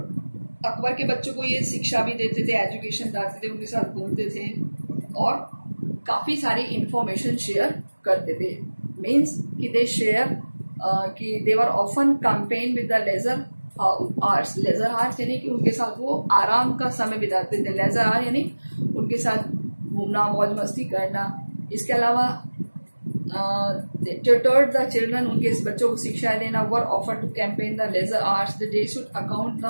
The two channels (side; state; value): both; inverted; correlation -1.00